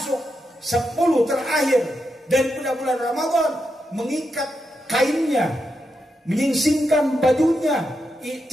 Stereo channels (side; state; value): both; normal; correlation 0.85